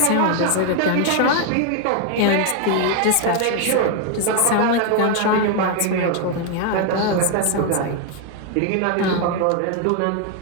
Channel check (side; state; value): both; different; correlation 0.00